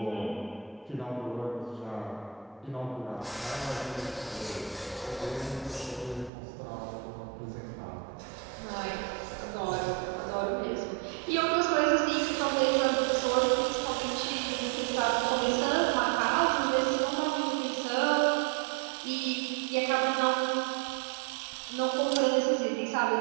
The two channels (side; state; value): left; drops out; at 6.3 s